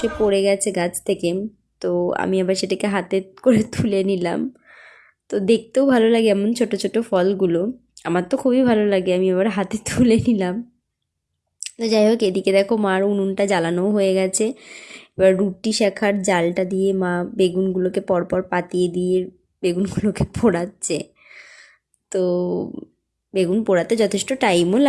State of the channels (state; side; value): identical; both; correlation 1.00